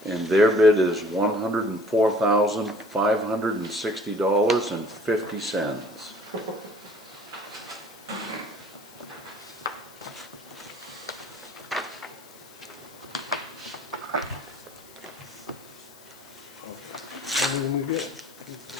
and their bid is $104,560.50. Everything we get.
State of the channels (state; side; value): noise; left; hiss, 22 dB below the sound